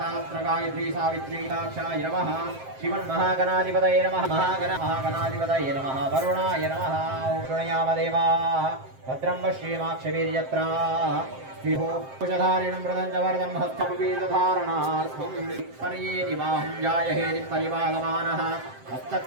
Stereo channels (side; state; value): left; late; 7.6 ms